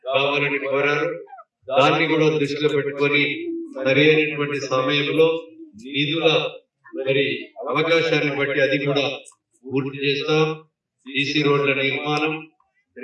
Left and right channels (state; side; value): identical; both; correlation 1.00